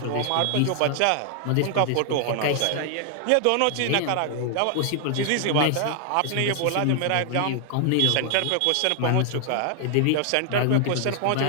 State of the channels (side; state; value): both; different; correlation 0.00